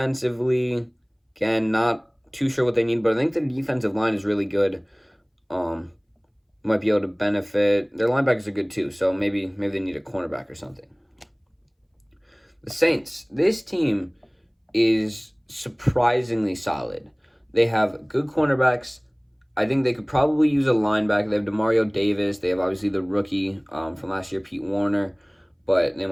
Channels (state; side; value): identical; both; correlation 1.00